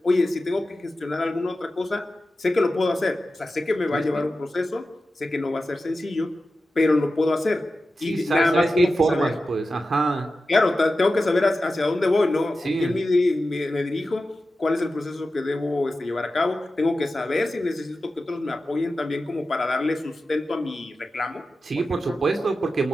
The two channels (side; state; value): both; normal; correlation 0.93